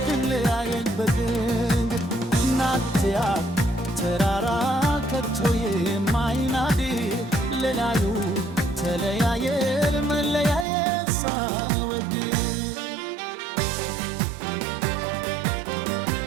ትለያየን በድንገት ናትያ ተራራ ከቶ የማይናድ ሌላዩ ተለያየን መለያየት ሳንወድ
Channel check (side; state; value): left; drops out; at 10.7 s